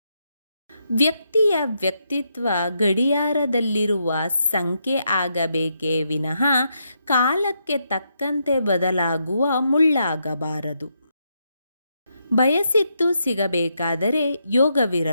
ವ್ಯಕ್ತಿಯ ವ್ಯಕ್ತಿತ್ವ ಗಡಿಯಾರದಲ್ಲಿರುವ ಸಂಖ್ಯೆ ಆಗಬೇಕೇ ವಿನಃ ಕಾಲಕ್ಕೆ ತಕ್ಕಂತೆ ಬದಲಾಗುವ ಮುಳ್ಳಾಗಬಾರದು. ಬಯಸಿದ್ದು ಸಿಗಬೇಕಾದರೆ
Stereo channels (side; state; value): both; inverted; correlation -0.80